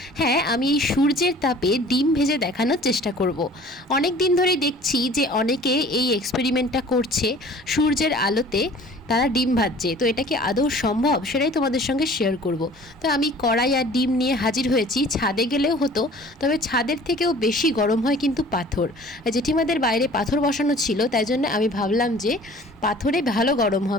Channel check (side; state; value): both; normal; correlation 0.48